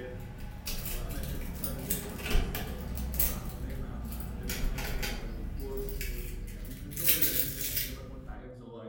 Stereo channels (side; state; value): both; identical; correlation 1.00